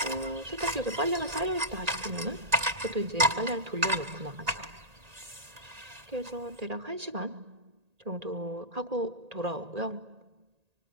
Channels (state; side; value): late; left; 1.8 ms